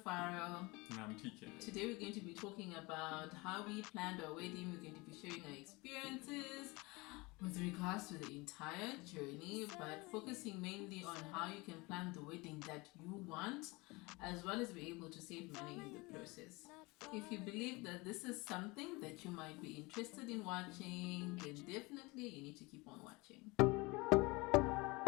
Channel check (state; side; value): quieter; right; 24.7 dB